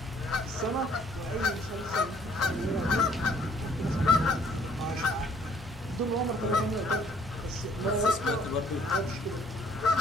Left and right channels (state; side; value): normal; both; correlation 0.61